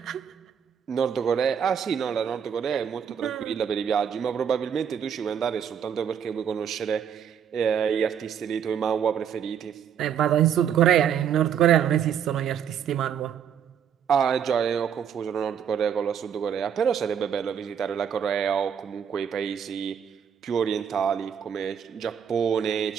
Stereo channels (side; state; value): left; quieter; 8.2 dB